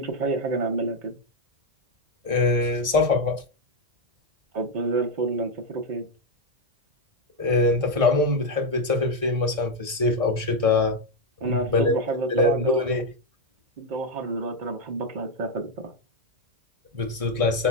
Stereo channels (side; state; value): left; late; 1.6 ms